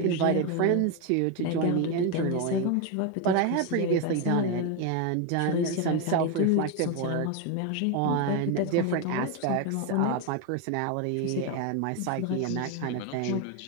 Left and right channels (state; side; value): different; both; correlation 0.02